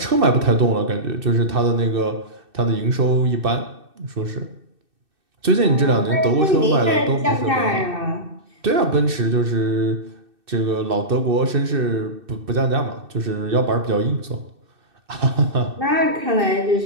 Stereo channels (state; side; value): late; left; 2.6 ms